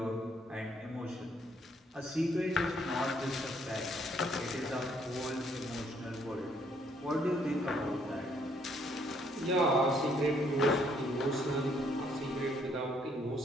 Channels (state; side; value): normal; both; correlation 0.67